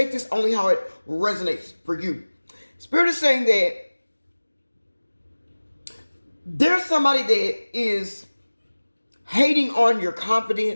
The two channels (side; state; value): both; inverted; correlation -1.00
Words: this only how it resonates for you. Spirit is saying that there's somebody that is hating on your